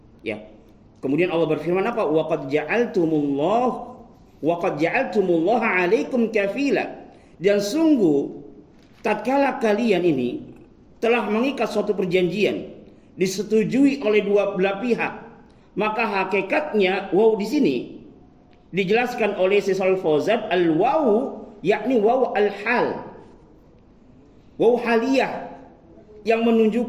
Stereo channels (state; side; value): identical; both; correlation 1.00